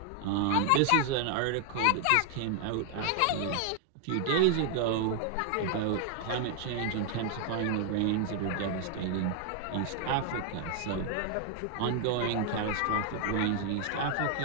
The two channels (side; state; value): both; different; correlation 0.00